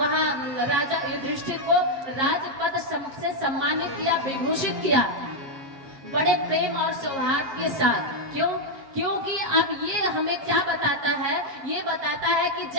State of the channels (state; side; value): late; left; 7.2 ms